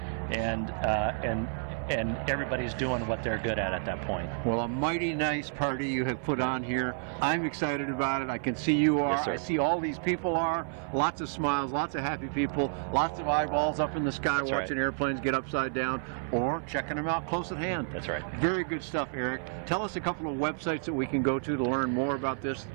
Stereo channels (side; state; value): left; silent; 56 dB below the other